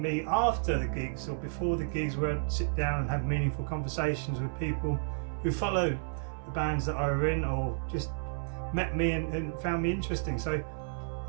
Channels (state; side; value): silent; left; 57 dB below the other